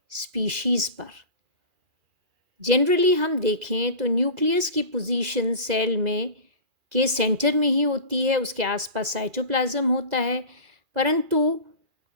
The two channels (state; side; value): late; left; 2.0 ms